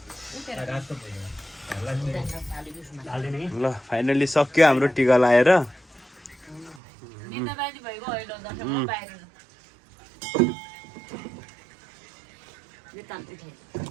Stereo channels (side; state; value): left; drops out; at 6.8 s